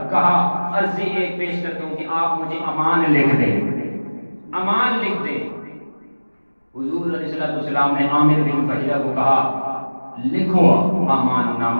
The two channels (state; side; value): inverted; both; correlation -1.00